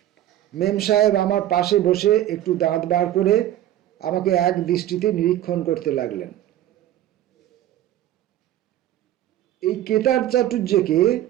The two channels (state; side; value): quieter; left; 12.7 dB